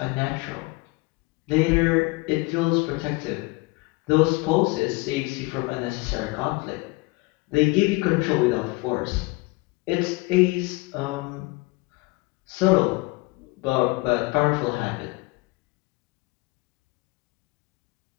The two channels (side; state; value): right; quieter; 24.0 dB